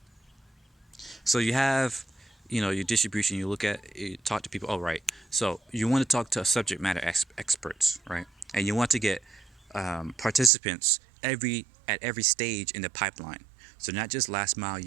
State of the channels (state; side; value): drops out; left; at 10.5 s